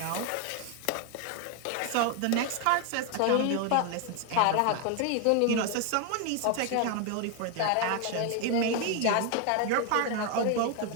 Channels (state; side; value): different; both; correlation 0.01